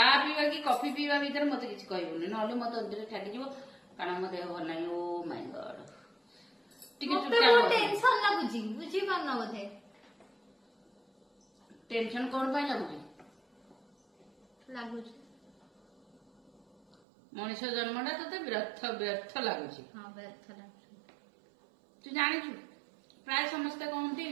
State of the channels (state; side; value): drops out; left; at 16.9 s